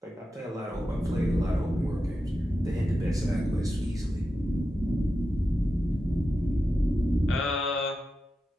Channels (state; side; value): normal; both; correlation 0.91